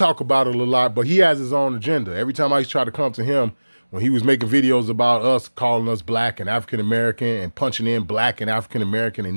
about it a lot, but he has his own agenda. Every time I used to try to come to him when he was making videos about us, calling us black and African American and punching in black and African American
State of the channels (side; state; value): both; inverted; correlation -1.00